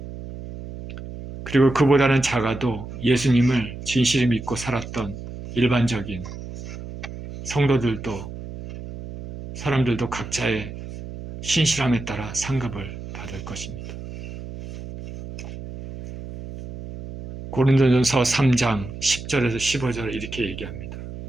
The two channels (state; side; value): noise; right; hum, 11 dB below the sound